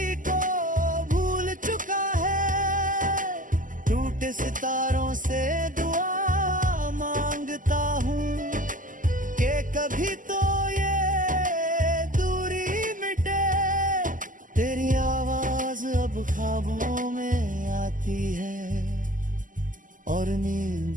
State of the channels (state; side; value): late; left; 0.38 ms